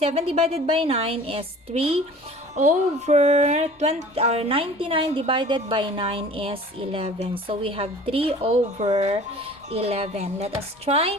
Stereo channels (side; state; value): both; normal; correlation 0.45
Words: divided by 9 is 3 over 20, or 99 divided by 9 is 11. So we have 3 over 11. Let us try.